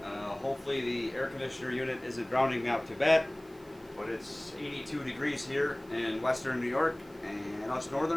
Hopefully the air conditioner unit isn't drowning me out too bad, but it's 82 degrees here in western New York, and us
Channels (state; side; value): noise; right; hiss, 27 dB below the sound